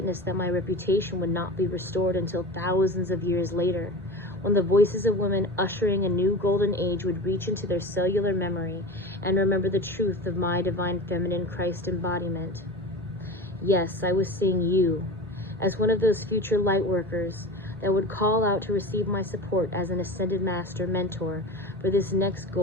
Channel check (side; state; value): both; normal; correlation 0.31